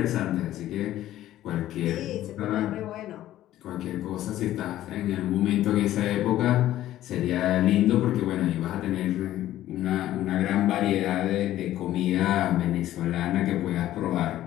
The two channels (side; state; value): right; quieter; 13.6 dB